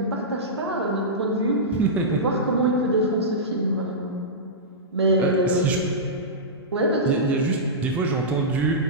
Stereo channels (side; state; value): both; normal; correlation -0.15